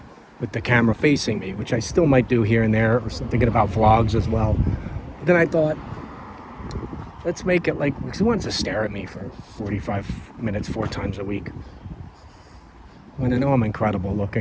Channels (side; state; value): both; identical; correlation 1.00